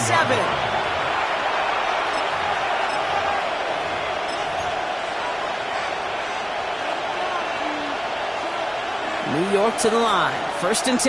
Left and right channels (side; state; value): both; identical; correlation 1.00